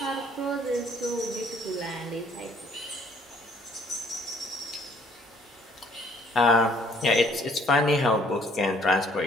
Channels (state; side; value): normal; both; correlation 0.61